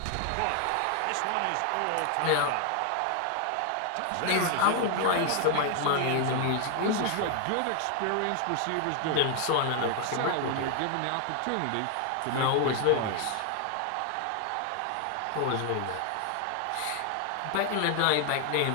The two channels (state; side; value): different; both; correlation 0.00